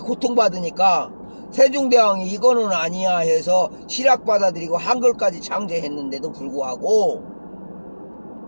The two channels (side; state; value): both; inverted; correlation -1.00